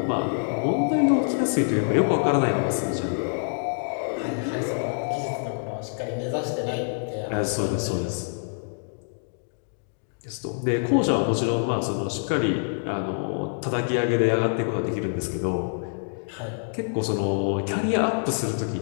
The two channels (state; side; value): silent; right; digital silence